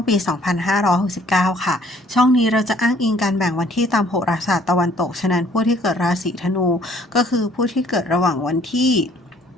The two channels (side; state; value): both; normal; correlation 0.59